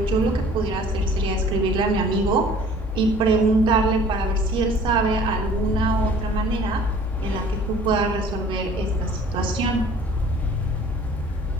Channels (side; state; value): both; normal; correlation 0.50